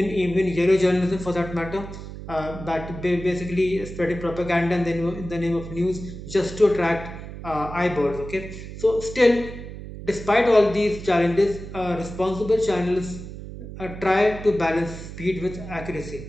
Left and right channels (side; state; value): right; noise; hum, 11 dB below the sound